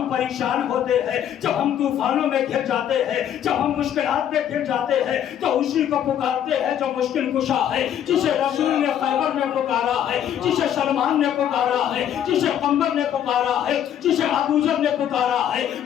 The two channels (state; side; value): quieter; right; 10.0 dB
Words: پریشان ہوتے ہیں, جب ہم طوفانوں میں گر جاتے ہیں, جب ہم مشکلات میں گر جاتے ہیں تو اسی کو پکارتے ہیں جو مشکل کشا ہے, جسے رسول نے خیبر میں پکارا ہے, جسے سلمان نے پکارا ہے, جسے قمر نے پکارا ہے, جسے ابو ذر نے پکارا ہے,